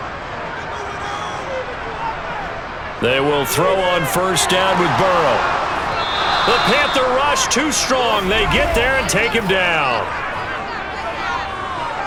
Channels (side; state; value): both; identical; correlation 1.00